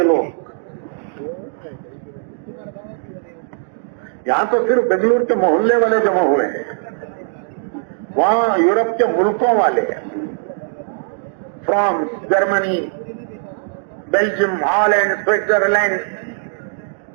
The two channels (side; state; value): left; silent; digital silence